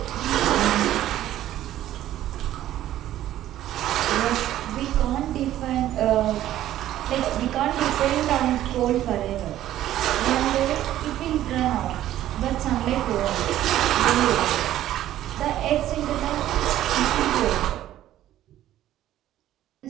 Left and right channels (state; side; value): quieter; left; 13.1 dB